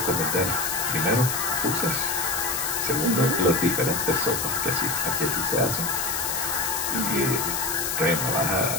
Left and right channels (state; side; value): noise; left; hiss, 1 dB below the sound